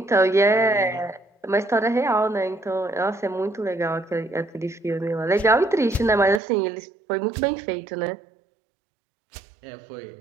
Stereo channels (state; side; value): drops out; left; at 6.4 s